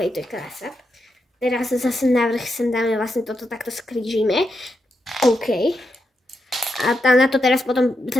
to je krása. Teraz zase navrch sem dáme, vlastne toto takto skrížime, OK. A tam na to teraz potom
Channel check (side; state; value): both; normal; correlation 0.84